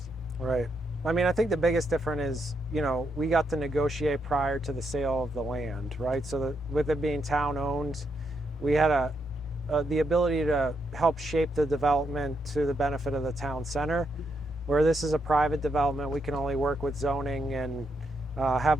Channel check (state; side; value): normal; both; correlation 0.80